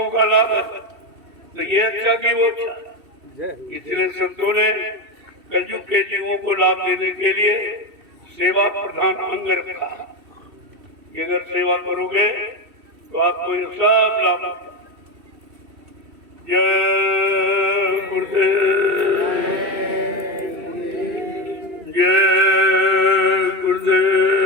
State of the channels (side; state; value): left; late; 2.7 ms